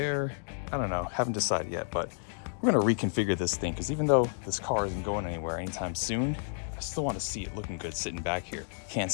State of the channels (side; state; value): right; silent; digital silence